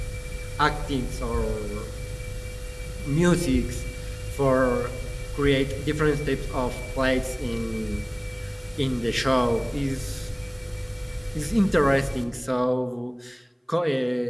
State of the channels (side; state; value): both; identical; correlation 1.00